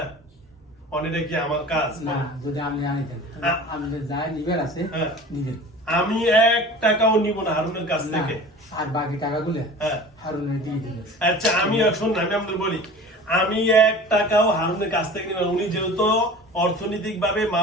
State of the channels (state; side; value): normal; both; correlation 0.40